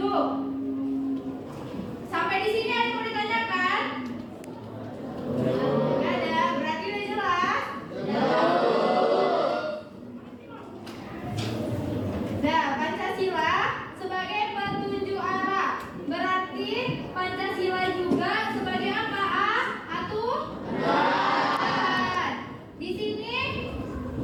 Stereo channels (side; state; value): both; identical; correlation 1.00